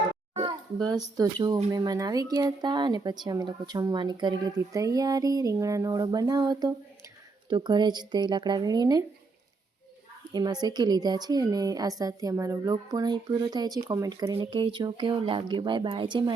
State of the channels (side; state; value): left; quieter; 3.9 dB